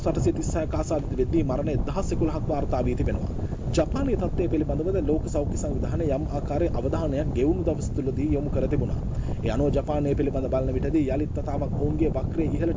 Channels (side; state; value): both; identical; correlation 1.00